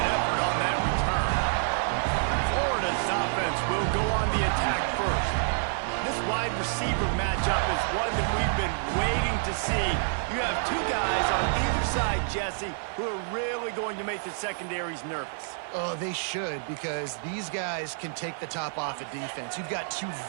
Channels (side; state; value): left; silent; digital silence